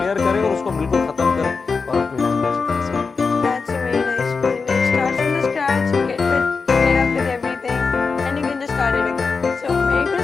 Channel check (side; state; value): right; quieter; 4.8 dB